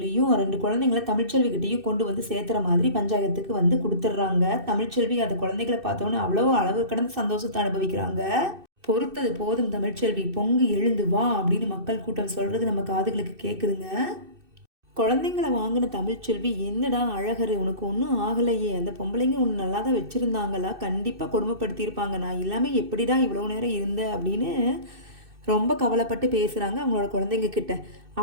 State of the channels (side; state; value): left; late; 2.6 ms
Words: 2 குழந்தைங்கள தமிழ்ச்செல்வி கிட்டயும் கொண்டு வந்து சேர்த்துற மாதிரி பஞ்சாயத்துக்கு வந்து குடுத்துடுறாங்க. தமிழ்ச்செல்வி அந்த குழந்தைகள பார்த்தோன்னே அவ்வளவு அளவு கடந்த சந்தோஷத்த அனுபவிக்கிறாங்க. பொறுத்தது போதும் தமிழ்ச்செல்வி, பொங்கி எழுந்து வா அப்படின்னு மக்கள் கூட்டம் சொல்றது நம்ம காதுகளுக்கு கேக்குதுங்க. குழந்தைங்கள வாங்கின தமிழ்ச்செல்வி, என்னடா அழகரு உனக்கு ஒன்றும் ஆகலையே, அந்த பொம்பளைங்க உன்னை நல்லா தான் வச்சிருந்தாங்களா, கண்டிப்பாக கொடுமைப்படுத்தியிருப்பாங்க, நான் இல்லாம எப்படிடா இவ்வளோ நேரம் இருந்த அப்படின்னு ரொம்ப கவலைப்பட்டு பேசுகிறாங்க அவங்களோட குழந்தைங்க கிட்ட.